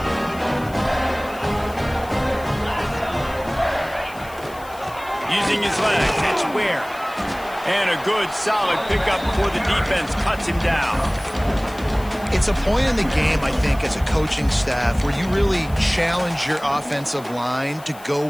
Using his legs, it's Ware. And a good, solid pickup before the defense cuts him down. It's a point in the game, I think, as a coaching staff where you really challenge your offensive line to go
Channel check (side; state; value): left; noise; hiss, 21 dB below the sound